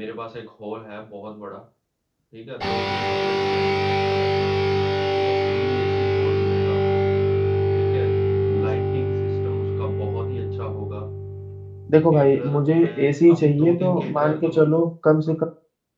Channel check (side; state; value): both; identical; correlation 1.00